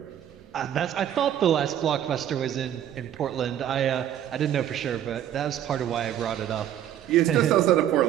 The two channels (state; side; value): quieter; left; 10.8 dB